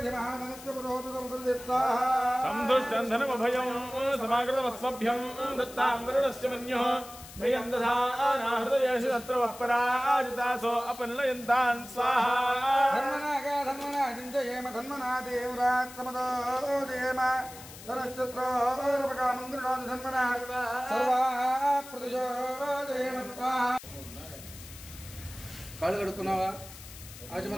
पुरोहितमुदृदित्ताः तं दुष्टं धनमभयं समाकृतवत्सभ्यं दत्तां वरुणस्य मन्युः मह्यं दधानाहृदयेषु तत्र वः पराजितासो अपनलयन्तान् स्वाहा धन्मनागा धन्मना चिन्तयेम धन्मना देवरात्तमदो जयेम धनश्चत्रोर्पकामन्त्रिणादि धन्मना सर्वा प्रतिशो जयेम स्वाहा కాళ్ళు కడుక్కున్నావా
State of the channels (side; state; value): left; noise; hiss, 16 dB below the sound